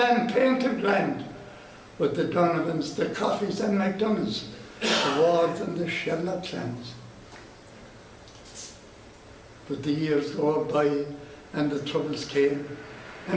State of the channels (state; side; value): identical; both; correlation 1.00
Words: painted grand, with the Donovans, the Coffeys and McDonoughs, the Wards and the Sherlock clans. But the years go by and the troubles came,